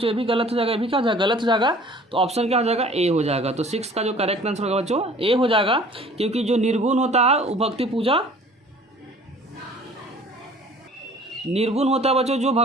ये भी गलत हो जाएगा, ये भी क्या हो जाएगा, गलत हो जाएगा। तो ऑप्शन क्या हो जाएगा, ए हो जाएगा। तो सिक्स का जो करेक्ट आंसर होगा बच्चों ए हो जाएगा, क्योंकि जो निर्गुण होता है वो भक्ति पूजा, निर्गुण होता है बच्चों जो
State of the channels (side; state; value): both; normal; correlation 0.50